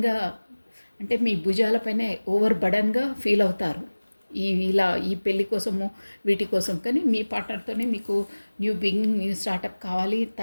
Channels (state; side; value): inverted; both; correlation -1.00